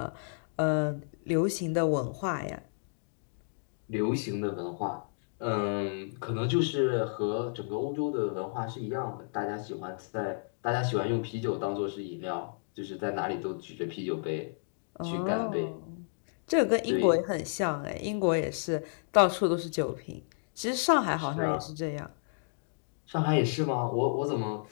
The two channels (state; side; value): silent; right; digital silence